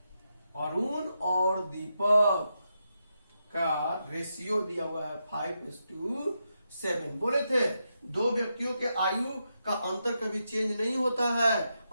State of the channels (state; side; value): inverted; both; correlation -0.85